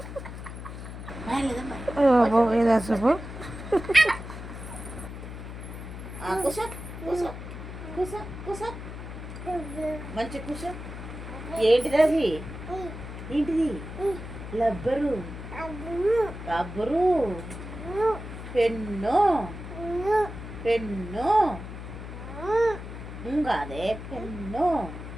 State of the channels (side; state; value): left; noise; hum, 10 dB below the sound